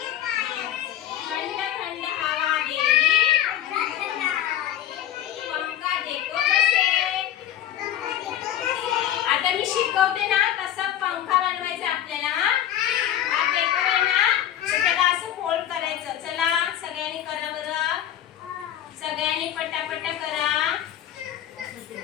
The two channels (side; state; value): right; quieter; 11.6 dB